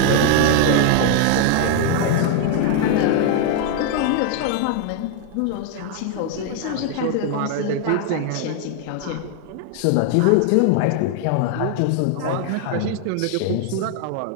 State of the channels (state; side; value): different; both; correlation 0.00